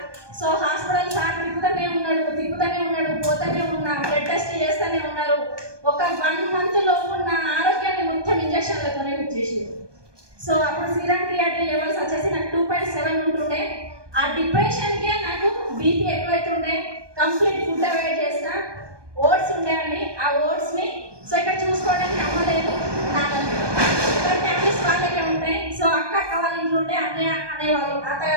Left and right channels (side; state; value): left; late; 1.2 ms